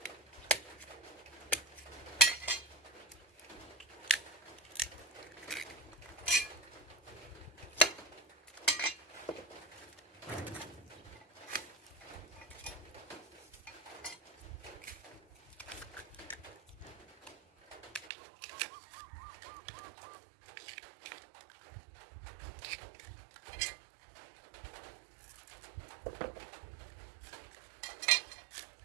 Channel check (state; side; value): drops out; left; at 18.1 s